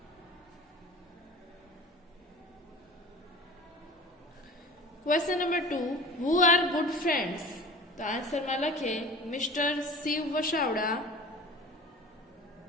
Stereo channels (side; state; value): both; normal; correlation 0.39